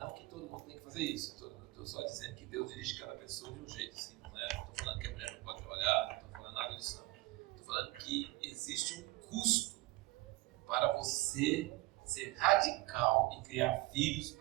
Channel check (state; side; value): quieter; left; 20.5 dB